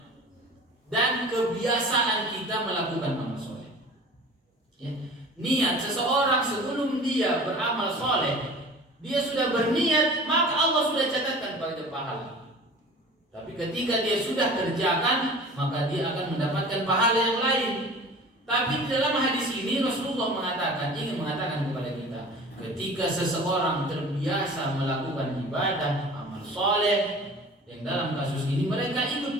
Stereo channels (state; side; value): normal; both; correlation 0.41